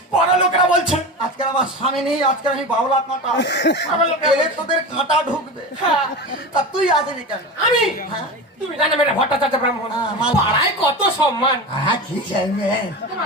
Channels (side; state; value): both; normal; correlation 0.27